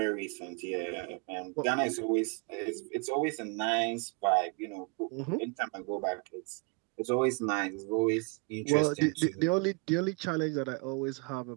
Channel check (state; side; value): quieter; left; 32.7 dB